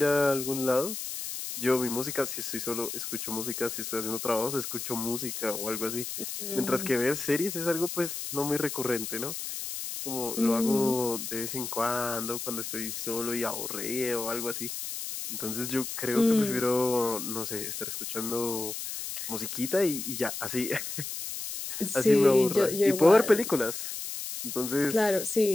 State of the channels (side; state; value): left; noise; hiss, 6 dB below the sound